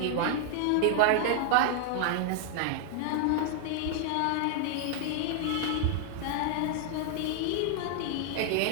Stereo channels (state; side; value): different; both; correlation 0.00